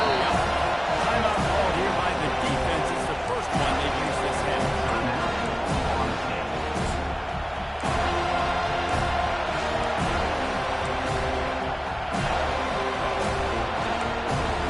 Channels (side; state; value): both; identical; correlation 1.00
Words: up. Timeout called here by the defense. It's the first one they've used this half.